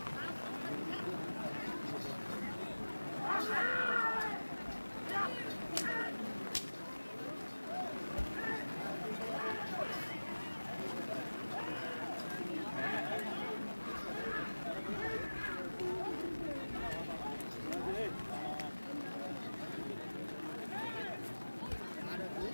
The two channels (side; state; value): both; inverted; correlation -1.00